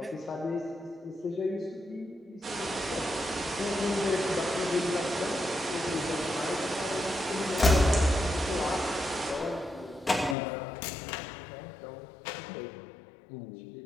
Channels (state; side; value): drops out; right; at 10.4 s